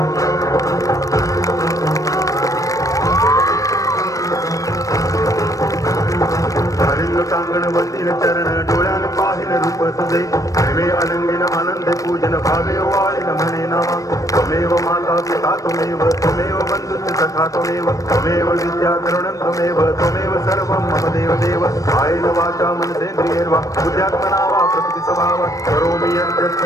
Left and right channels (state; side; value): late; right; 0.16 ms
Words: कांगण वंदिन चरण डोळ्यान पाहिन रूप तुझे प्रेमे अनंगिन आनंद पूजन भावे वाळिन म्हणे नामा त्वमेव माता पिता त्वमेव त्वमेव बंधुश्च सखा त्वमेव त्वमेव विद्या करुणं त्वमेव सर्वं मम देव देव कायेन वाचा मनसेन्द्रियैर्वा बुद्ध्यात्मना वा प्रकृति स्वभावात् करोमि यत्